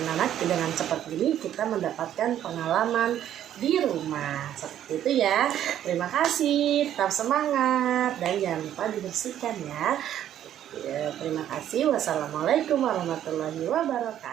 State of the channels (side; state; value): left; quieter; 11.0 dB